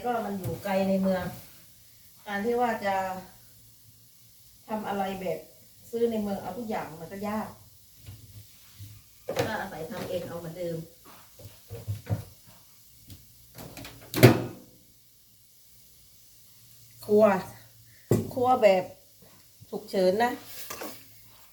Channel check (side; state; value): both; identical; correlation 1.00